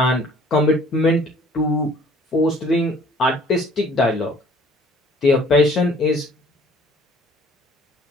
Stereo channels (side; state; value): both; normal; correlation 0.55